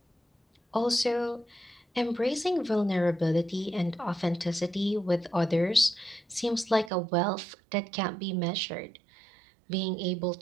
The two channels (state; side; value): drops out; left; at 6.9 s